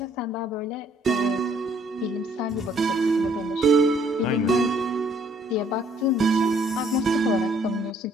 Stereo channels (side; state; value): both; normal; correlation 0.63